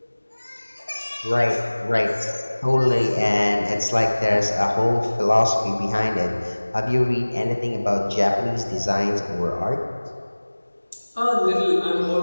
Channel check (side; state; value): both; inverted; correlation -1.00